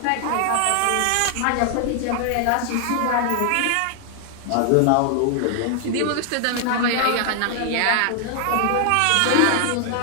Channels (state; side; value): different; both; correlation 0.00